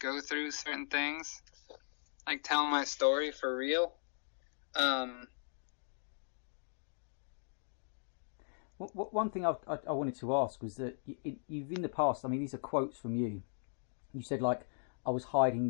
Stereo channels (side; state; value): right; silent; digital silence